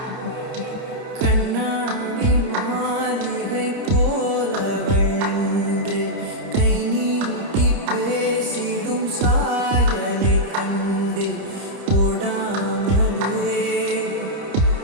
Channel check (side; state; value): left; late; 30 ms